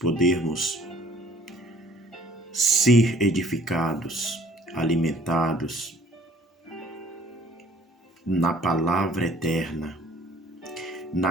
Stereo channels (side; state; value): both; normal; correlation 0.55